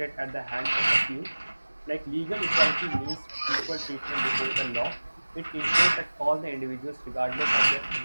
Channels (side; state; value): both; inverted; correlation -1.00